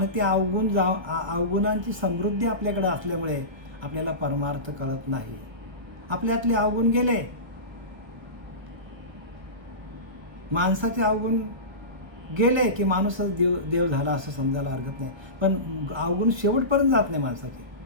ते अवगुणांची समृद्धी आपल्याकडे असल्यामुळे आपल्याला परमार्थ कळत नाही. आपल्यातले अवगुण गेले, माणसाचे अवगुण गेले की माणूसच देव झाला असं समजायला हरकत नाही. पण अवगुण शेवटपर्यंत जात नाही माणसाचे.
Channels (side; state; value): left; late; 1.4 ms